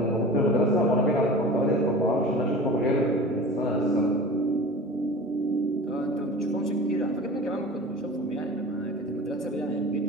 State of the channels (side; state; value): both; normal; correlation 0.37